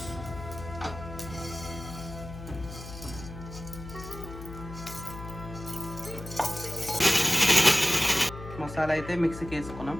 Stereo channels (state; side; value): noise; left; hum, 12 dB below the sound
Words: మసాలా అయితే మిక్సీకి వేసుకున్నాం.